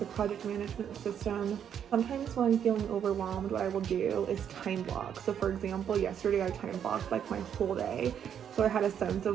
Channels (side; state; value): left; quieter; 8.7 dB